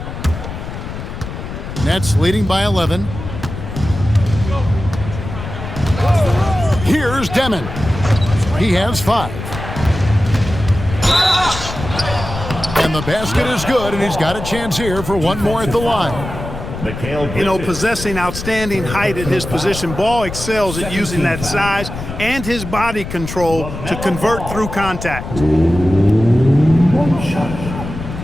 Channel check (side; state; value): left; noise; rumble, 8 dB below the sound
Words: Nets leading by 11. Here's Demon. He has 5. And the basket is good, and he's got a chance here for one more at the line. You know, possessing outstanding height at his position, Ball excels at using that size and his body control to convert through contact.